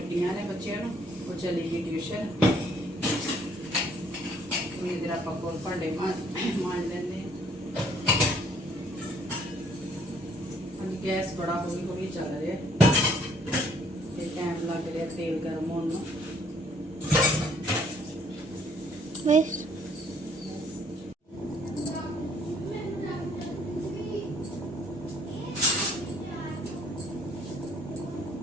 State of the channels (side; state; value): both; normal; correlation 0.63